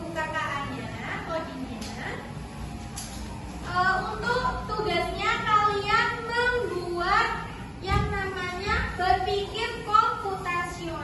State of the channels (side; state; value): both; identical; correlation 1.00